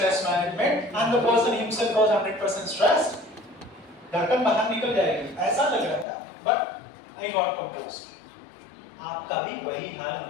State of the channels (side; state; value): right; drops out; at 6.1 s